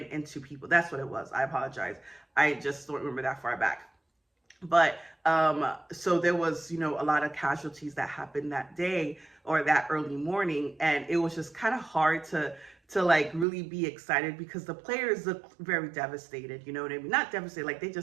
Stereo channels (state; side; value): drops out; left; at 13.5 s